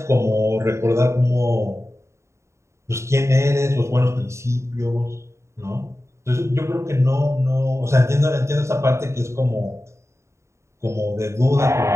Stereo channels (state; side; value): late; left; 0.14 ms